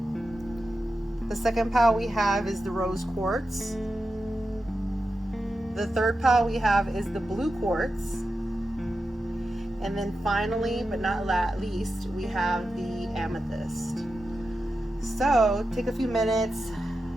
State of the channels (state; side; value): normal; both; correlation 0.90